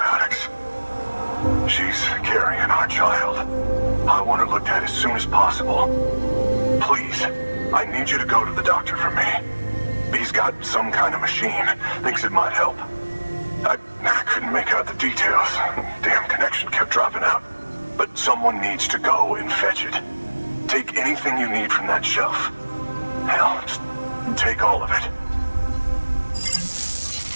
She's carrying our child. I want her looked at as soon as possible. Please, I need you to go to the doctor for me. He's got some kind of machine. Thinks it might help. I couldn't make out the details. Damn connection kept dropping out. But someone needs to go and fetch it. Take anything you need from that shelf. Hell, just take all of it.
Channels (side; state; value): both; inverted; correlation -1.00